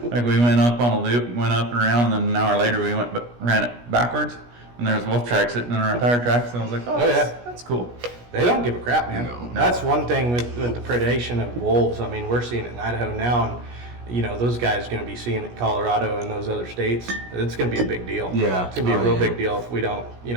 Like we went up on a loop, went up and around, and then an hour later we ran it backwards, and there was wolf tracks sitting in our tire tracks, and I was like, oh, Oh, yeah. that's cool. They don't give a crap, man. No. That's one thing with the predation of wolves. I mean, we're seeing it in Idaho now, and those guys are going to be seeing it in Colorado and those other states. It's going to be a big deal. Yeah. It's going to be a Oh, real yeah. big deal if we don't,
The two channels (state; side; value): late; left; 17 ms